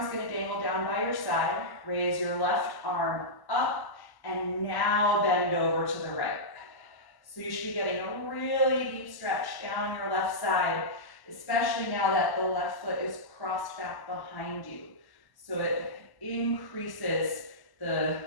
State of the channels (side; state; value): right; late; 1.1 ms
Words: going to dangle down by your side. Raise your left arm up, and now bend over to the right. So you should be getting a really deep stretch down your left side, especially now that the left foot is crossed back behind you. So it increases the